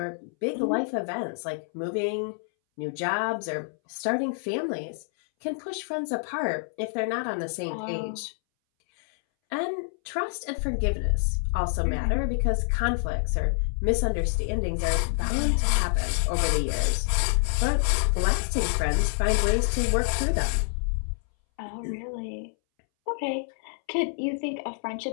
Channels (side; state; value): right; silent; 60 dB below the other